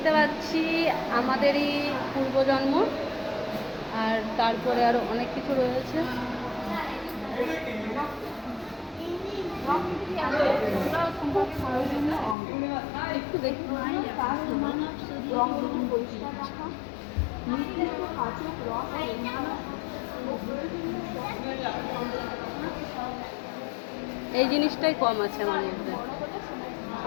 পাচ্ছি আমাদেরই পূর্বজন্ম, আর তারপরে আরো অনেক কিছু রয়েছে। একটু দেখি এই জিনিসটাই কম আছে আমার মধ্যে,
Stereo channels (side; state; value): right; drops out; at 12.4 s